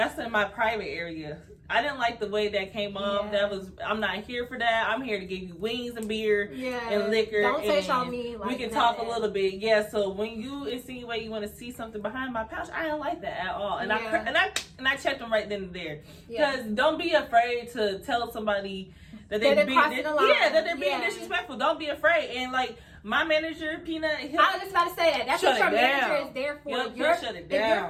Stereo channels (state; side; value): identical; both; correlation 1.00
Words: in my private area. I didn't like the way that came off. I'm not here for that. I'm here to give you wings and beer and liquor. Don't touch on me. Like, we can talk a little bit. Yeah. So when you insinuate you want to see something behind my pouch, I didn't like that at all. And I checked them right then and there. Because don't be afraid to tell somebody that they're being disrespectful. Don't be afraid. And like, My manager, Peanut, I was just about to say that. That's what your manager is there for. Yep, you'll shut it down. If